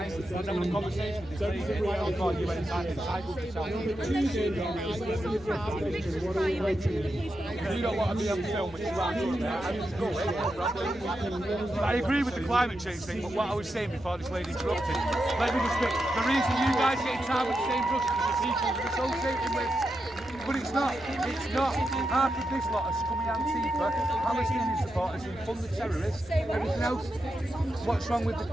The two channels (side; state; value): right; noise; rumble, 22 dB below the sound